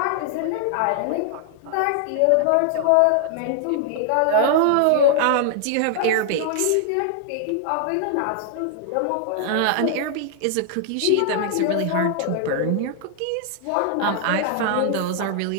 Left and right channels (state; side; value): different; both; correlation -0.01